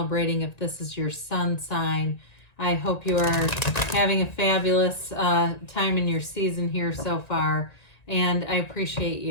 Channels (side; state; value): right; late; 1.9 ms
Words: if this is your sun sign. I hope you are having a fabulous time in your season here so far, and I appreciate